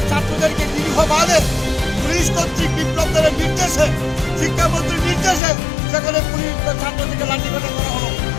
ছাত্রদেরকে দীর্ঘভাবে পুলিশ কর্তৃক বিপ্লবদের নির্দেশে শিক্ষামন্ত্রীর নির্দেশে সেখানে পুলিশ ছাত্রদেরকে লাঠিপেটা করা হলো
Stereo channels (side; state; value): right; drops out; at 5.4 s